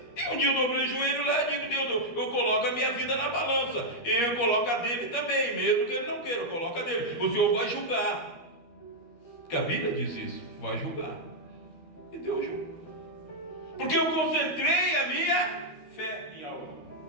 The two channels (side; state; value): right; late; 13 ms